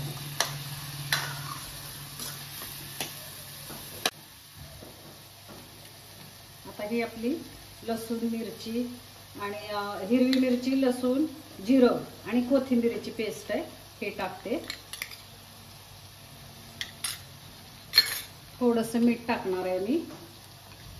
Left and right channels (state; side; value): identical; both; correlation 1.00